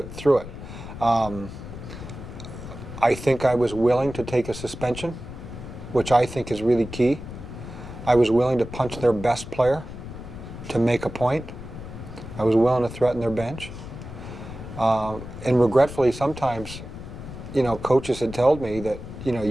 I think I was willing to take a suspension, which I think is really key. I was willing to punch their best player to make a point. I was willing to threaten their bench. And regretfully, sometimes, coaches had told me that,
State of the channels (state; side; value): noise; left; rumble, 11 dB below the sound